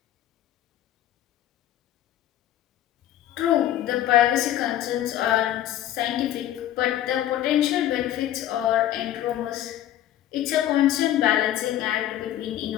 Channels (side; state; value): right; quieter; 12.5 dB